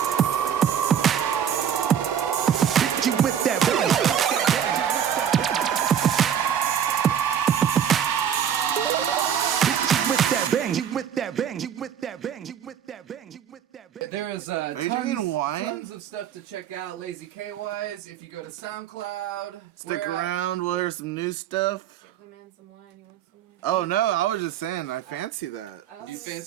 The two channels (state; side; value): quieter; left; 8.9 dB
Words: bang, you with that bang, hit you with that bang, you with that bang, you with that There's Are you drinking wine? tons of stuff to check out Lazy K-wise. If you go to SoundCloud. Stick around, we'll hear some new stuff. Give the man some wine. You want some wine? Oh no, I was just saying, I fancy that. You